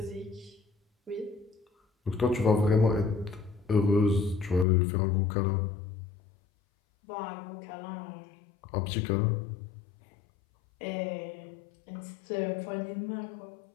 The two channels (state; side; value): drops out; right; at 4.7 s